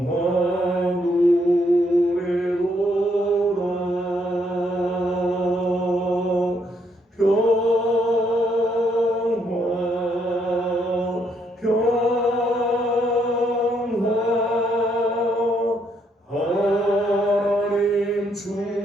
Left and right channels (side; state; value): both; normal; correlation 0.73